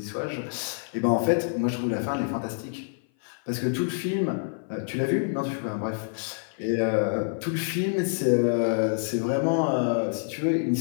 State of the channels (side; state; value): right; silent; 56 dB below the other